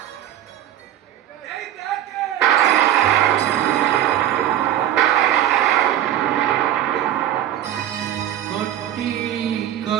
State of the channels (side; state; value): left; quieter; 11.8 dB